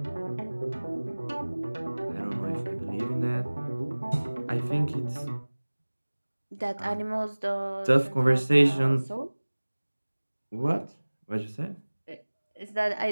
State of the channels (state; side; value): inverted; both; correlation -1.00